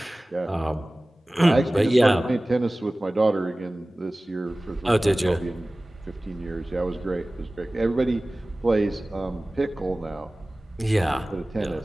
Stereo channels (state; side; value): normal; both; correlation 0.98